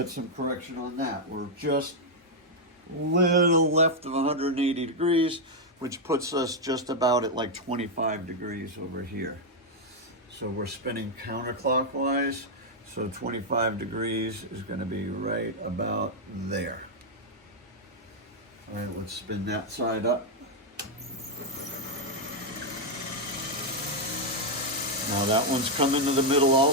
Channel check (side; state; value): both; normal; correlation 0.00